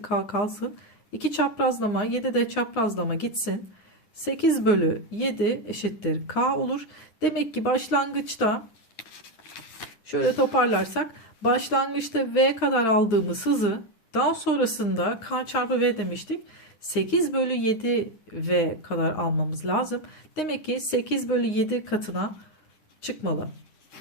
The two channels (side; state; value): right; late; 9.6 ms